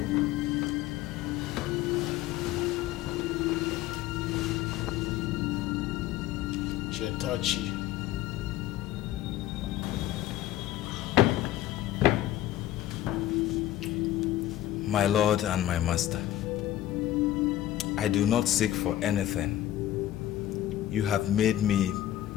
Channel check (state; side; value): quieter; right; 13.2 dB